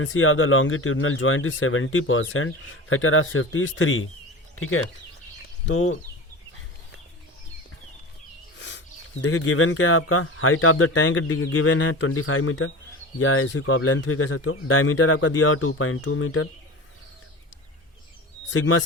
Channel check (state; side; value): normal; both; correlation 0.31